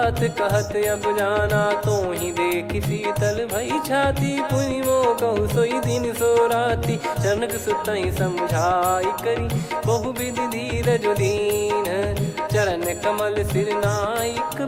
कहत अब जाना तो ही देख शीतल भई छाती पुनि मो कहु सोई दिन सो राती जनक सुतई समझाई करी बहु विधि धीरज दीन चरण कमल सिर नाइक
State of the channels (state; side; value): identical; both; correlation 1.00